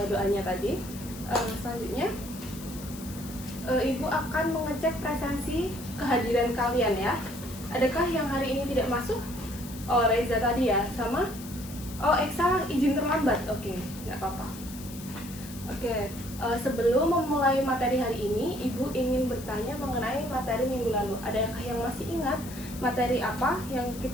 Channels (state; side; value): noise; left; hiss, 15 dB below the sound